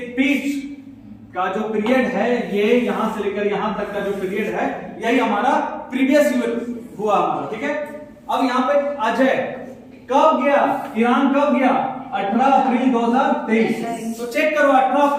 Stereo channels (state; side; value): identical; both; correlation 1.00